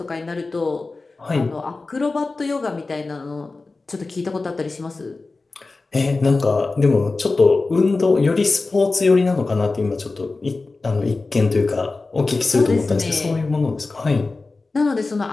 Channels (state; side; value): quieter; right; 3.6 dB